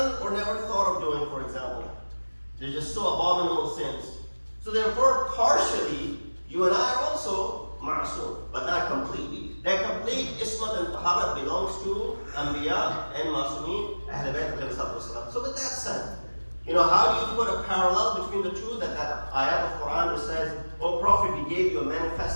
or never thought of doing, for example. They're just so abominable sins. So therefore, partially, you and I are also ma'asum, but not completely. That complete ismat and taharat belongs to Anbiya and Ma'asumeen, Ahl-e-Bait. So with that said, how do you put a parallel between the two? That ayat of Quran which says, "O Prophet, we gave you a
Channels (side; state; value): both; inverted; correlation -1.00